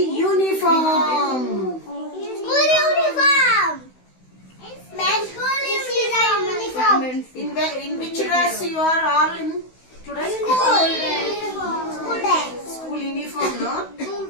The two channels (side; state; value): right; late; 16 ms